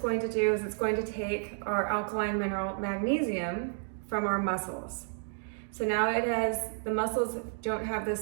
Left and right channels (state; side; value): silent; left; 57 dB below the other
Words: to do is it's going to take our alkaline mineral magnesium from our muscles. So now the muscles don't have